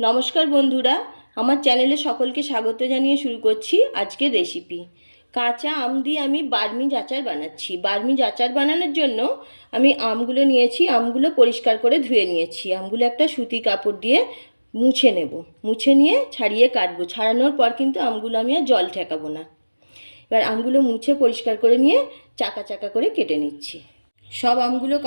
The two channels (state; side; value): inverted; both; correlation -1.00